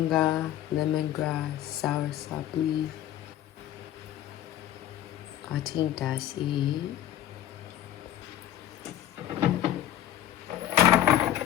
lemongrass, soursop leaf. I think that's it.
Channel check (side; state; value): right; quieter; 12.1 dB